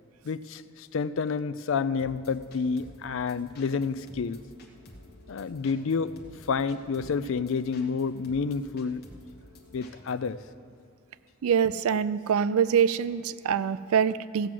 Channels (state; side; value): normal; both; correlation -0.07